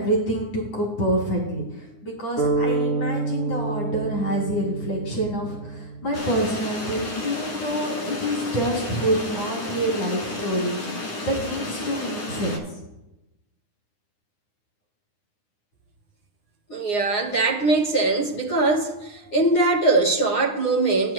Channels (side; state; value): right; late; 9.7 ms